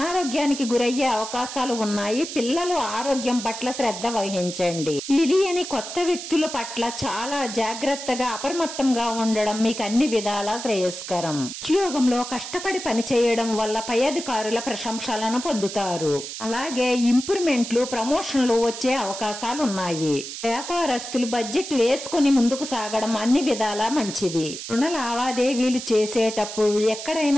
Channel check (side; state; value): right; noise; hiss, 9 dB below the sound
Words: గురయ్యే అవకాశాలు ఉన్నాయి. పిల్లలు ఆరోగ్యం పట్ల శ్రద్ధ వహించండి. తెలియని కొత్త వ్యక్తుల పట్ల చాలా జాగ్రత్తగా అప్రమత్తంగా ఉండడం మీకు అన్ని విధాలా శ్రేయస్కరం. ఉద్యోగంలో కష్టపడి పనిచేయడం వల్ల పై అధికారుల ప్రశంసలను పొందుతారు. అలాగే ఇంప్రూవ్మెంట్లు, ప్రమోషన్లు వచ్చే అవకాశాలున్నాయి. వ్యాపారస్తులు బడ్జెట్ వేసుకుని ముందుకు సాగడం అన్ని విధాలా మంచిది. రుణ లావాదేవీలు చేసేటప్పుడు,